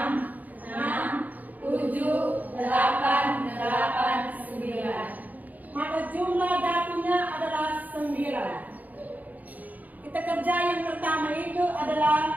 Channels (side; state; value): left; late; 0.079 ms